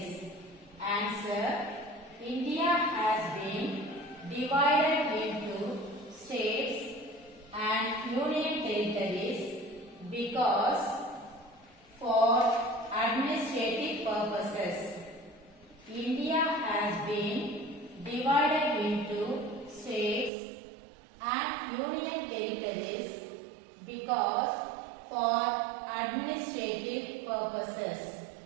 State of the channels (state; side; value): drops out; left; at 20.3 s